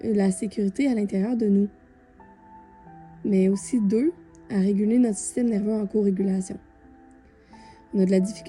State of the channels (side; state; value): both; identical; correlation 1.00